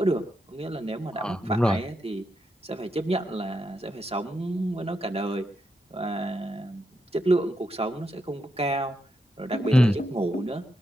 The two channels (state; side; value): normal; both; correlation 0.83